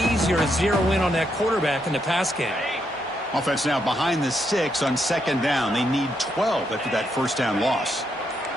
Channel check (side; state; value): both; normal; correlation 0.79